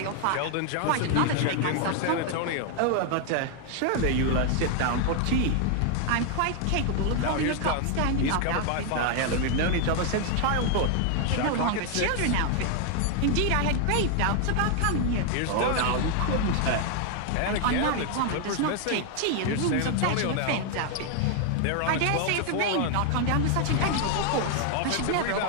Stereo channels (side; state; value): both; different; correlation 0.00